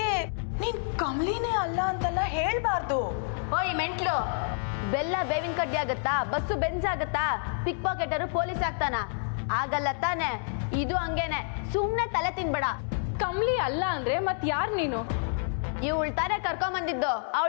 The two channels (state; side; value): silent; right; digital silence